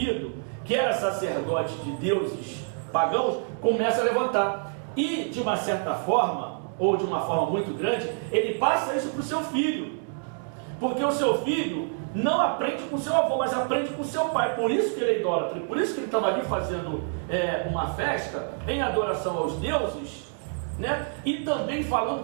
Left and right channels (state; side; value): silent; left; 60 dB below the other